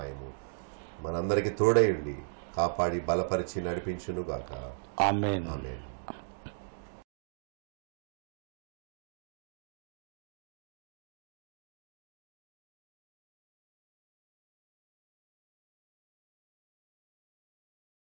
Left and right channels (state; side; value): silent; left; digital silence